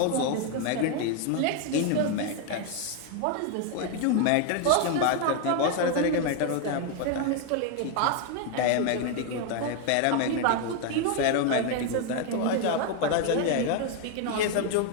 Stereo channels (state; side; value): different; both; correlation 0.01